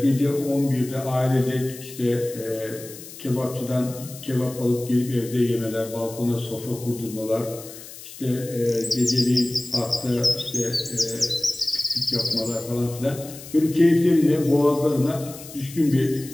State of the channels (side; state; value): left; noise; hiss, 15 dB below the sound